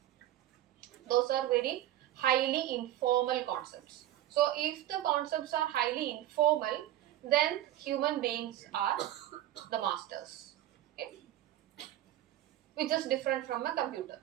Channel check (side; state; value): left; quieter; 13.5 dB